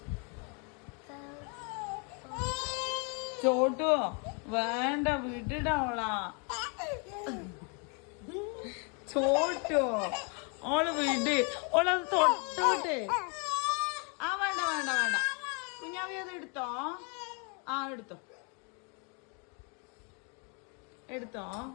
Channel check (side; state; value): right; quieter; 36.0 dB